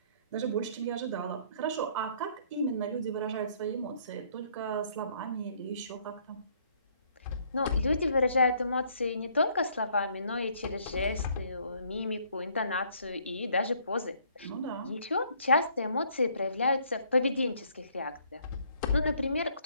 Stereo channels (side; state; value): both; inverted; correlation -0.63